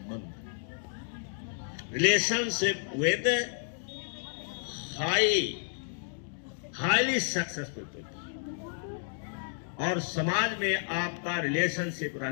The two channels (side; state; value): right; silent; 57 dB below the other